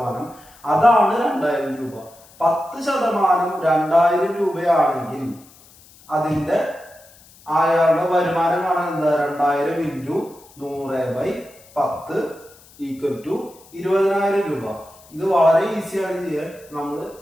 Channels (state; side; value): noise; left; hiss, 25 dB below the sound